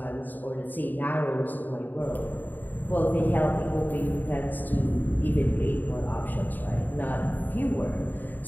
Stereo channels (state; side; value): late; right; 0.088 ms